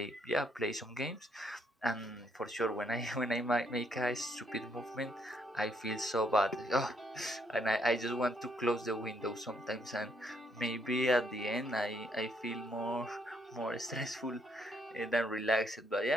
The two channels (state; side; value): normal; both; correlation 0.71